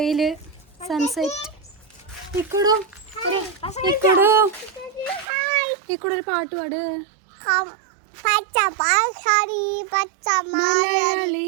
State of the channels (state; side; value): drops out; left; at 5.2 s